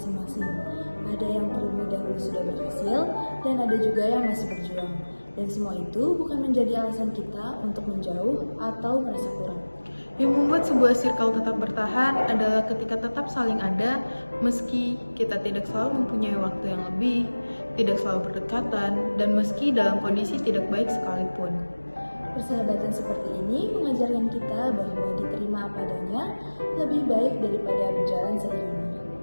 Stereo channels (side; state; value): both; inverted; correlation -1.00